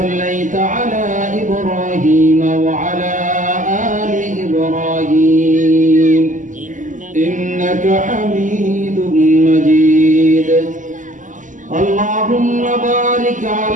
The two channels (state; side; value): late; left; 0.37 ms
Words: على إبراهيم وعلى آل إبراهيم إنك حميد مجيد اللهم بارك